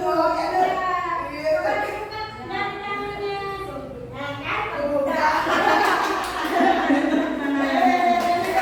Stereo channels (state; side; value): identical; both; correlation 1.00